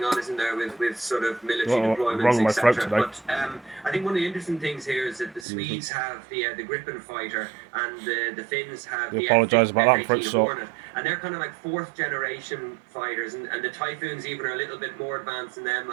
on, isn't there, with sort of military deployments, etc. But I think one of the interesting things here is that the Swedes have the Gripen fighter and the Finns have the F-18 Hornet, and they're kind of like 4th generation fighters, and the Typhoons even are a little bit more advanced than them,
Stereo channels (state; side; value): drops out; left; at 5.5 s